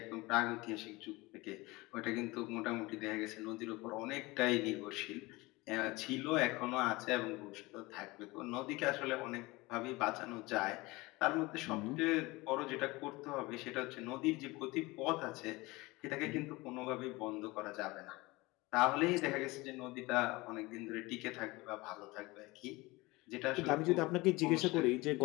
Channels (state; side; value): quieter; right; 22.2 dB